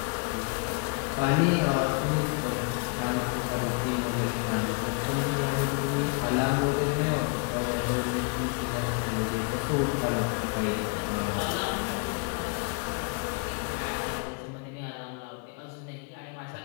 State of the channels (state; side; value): quieter; right; 34.8 dB